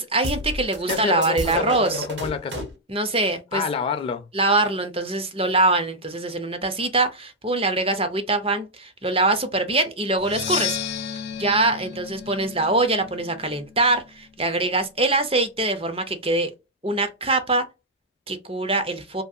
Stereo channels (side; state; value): both; normal; correlation -0.06